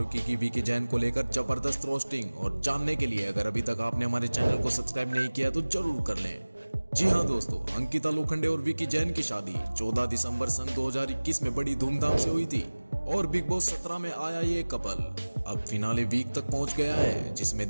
की विकी जैन को लेकर जबरदस्त रोस्टिंग। और जानने के लिए अगर अभी तक आपने हमारे चैनल को सब्सक्राइब नहीं किया तो जरूर कर लें। जी हाँ दोस्तों, अंकिता लोखंडे और विकी जैन की शादी 14 दिसंबर सन 2021 में बड़ी धूमधाम से हुई थी और बिग बॉस 17 में आया ये कपल अब फिनाले वीक तक पहुंच गया है, जिसमें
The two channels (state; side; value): inverted; both; correlation -1.00